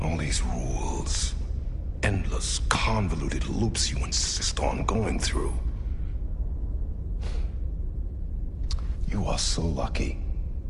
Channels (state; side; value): identical; both; correlation 1.00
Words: All these rules, endless, convoluted loops you insist on going through. You are so lucky,